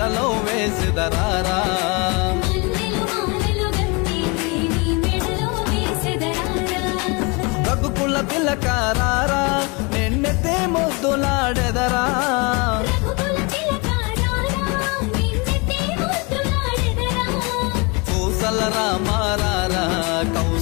వేసిదరారా రఘుకుల తిలకారారా నిన్నెతే ముద్దులాడెదరా కౌసల రామారారా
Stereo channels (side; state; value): right; quieter; 29.4 dB